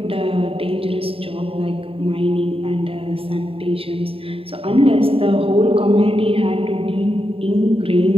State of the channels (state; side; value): late; left; 0.27 ms